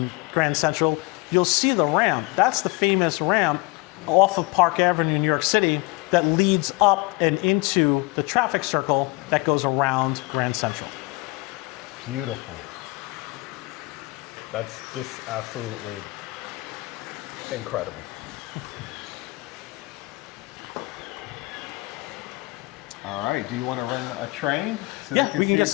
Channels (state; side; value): quieter; right; 24.3 dB